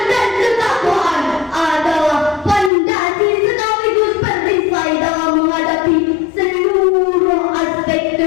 dan ketakwaan adalah fondasi sekaligus perisai dalam menghadapi seluruh aspek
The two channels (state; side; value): drops out; right; at 2.7 s